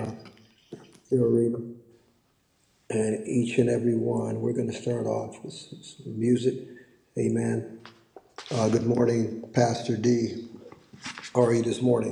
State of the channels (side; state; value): both; identical; correlation 1.00